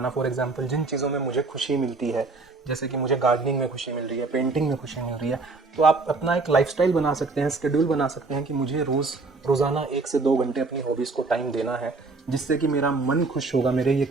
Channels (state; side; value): quieter; left; 3.8 dB